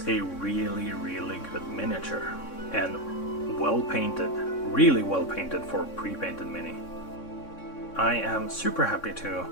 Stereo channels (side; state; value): right; late; 3.6 ms